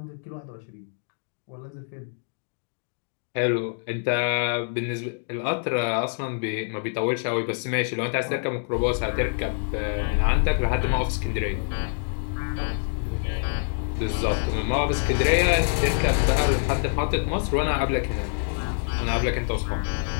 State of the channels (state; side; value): silent; right; 61 dB below the other